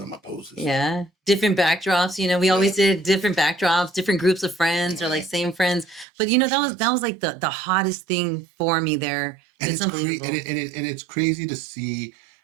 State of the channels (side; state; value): left; drops out; at 6.1 s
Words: on my poses. Yeah. Different backdrops. We always did different backdrops, different groups of friends, or like same friends. But that was like the hottest thing for me there. It's unbelievable. And it's crazy to see,